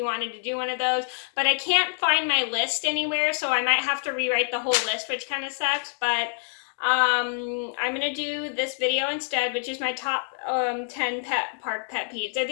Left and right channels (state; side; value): silent; right; 59 dB below the other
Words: wanted to do one of those, but I can't find my list anywhere, so I might have to rewrite the whole list, which kind of sucks, but I'm gonna do this video instead, which is my top 10 park pet peeves. So